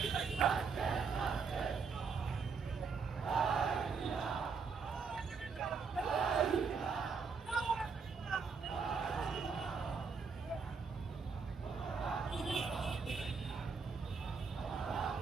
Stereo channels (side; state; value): left; quieter; 5.3 dB